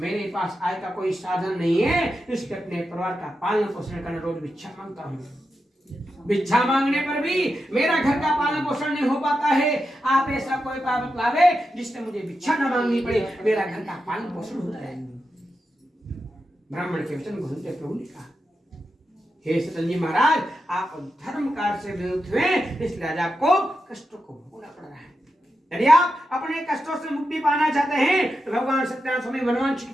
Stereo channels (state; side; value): normal; both; correlation 0.88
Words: पास आय का कोई साधन नहीं है, इसके अपने परिवार का पालन पोषण करने रोज भिक्षा मांगता हूँ। भिक्षा मांगने पर भी मेरा घर का पालन पोषण नहीं हो पाता है। आप ऐसा कोई उपाय बतलावे जिससे मुझे भिक्षा न मांगनी पड़े, मेरा घर का पालन पोषण हो जाए। ब्राह्मण के वचन को सुनते प्रभु ने कहा, हे सतन जी महाराज, आप धर्म कार्य से विमुक्त हुए, इसलिए आज आपको कष्टों को भोगना पड़ रहा है। यदि आप अपने कष्टों से मुक्ति पाना चाहते हैं तो भगवान सत्यनारायण स्वामी मनवांछित